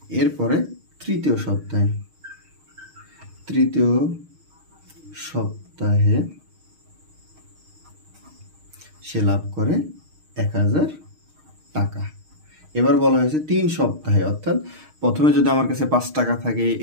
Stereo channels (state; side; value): late; left; 6.4 ms